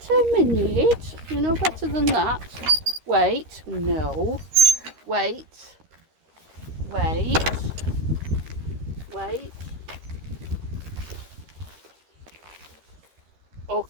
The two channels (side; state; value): left; late; 13 ms